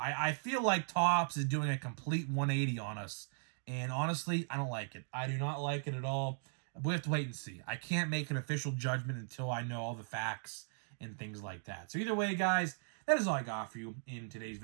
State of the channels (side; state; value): left; silent; digital silence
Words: feel like Topps is doing a complete 180 on us. And honestly, I don't like it. I do not like it at all. We have to wait and see. I can't make an official judgment until I know all the facts and things like that. So either way, guys, that is all I got for you in today's